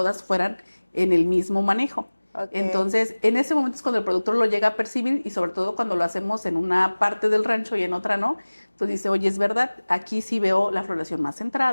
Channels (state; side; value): inverted; both; correlation -1.00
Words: fueran en el mismo manejo. Okay. Entonces, en ese momento es cuando el productor lo llega a percibir y sobre todo cuando lo hacemos en una parte del rancho y en otra no, pues dice, oye, es verdad, aquí sí veo la floración más